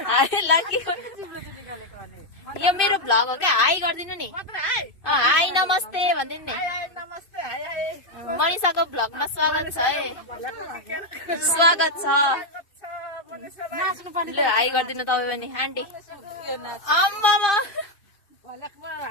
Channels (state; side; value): late; right; 2.5 ms